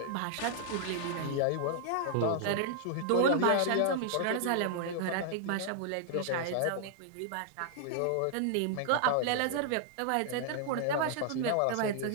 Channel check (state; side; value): different; both; correlation -0.01